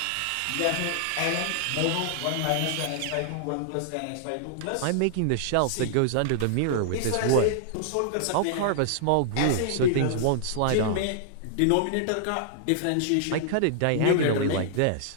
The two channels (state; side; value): different; both; correlation -0.01